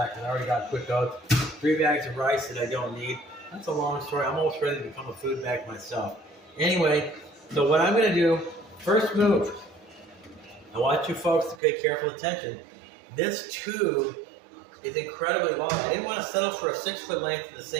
because I already got quick oats. 3 bags of rice that I don't need. That's a long story. I'm almost ready to become a food bag myself. Anyway, so what I'm gonna do, first move, I want you folks to pay careful attention. This tube is incredibly long. I didn't want to settle for a 6-foot length of the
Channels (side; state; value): left; drops out; at 11.6 s